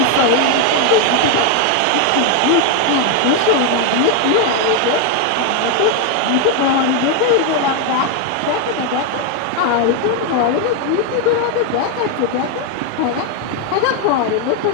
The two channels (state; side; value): different; both; correlation 0.01